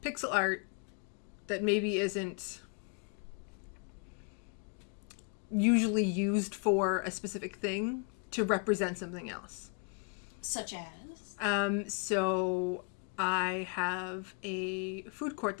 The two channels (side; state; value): right; quieter; 38.0 dB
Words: pixel art that maybe isn't usually used for a specific thing to represent something else. Such as? So I have a food court